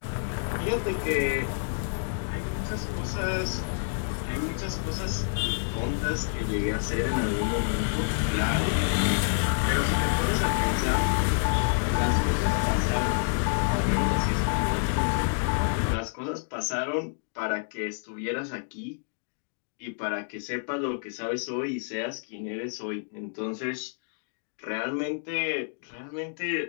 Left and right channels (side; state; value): right; silent; digital silence